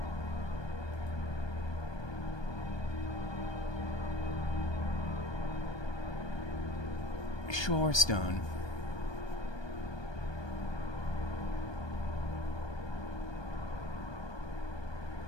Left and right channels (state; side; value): late; right; 1.2 ms